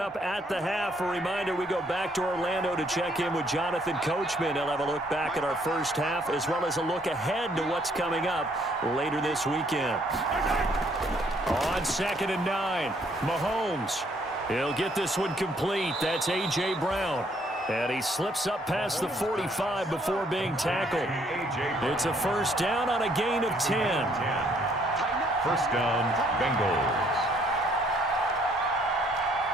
at the half, a reminder, we go back to Orlando to check in with Jonathan Coachman. He'll have a look back at our first half, as well as a look ahead to what's coming up later this weekend. On 2nd and 9, Mahomes. He'll get this one complete. That's A.J. Brown. And he slips up past the 45 before being tackled. It's a first down on a gain of 10. First down, Bengals.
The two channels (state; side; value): normal; both; correlation 0.66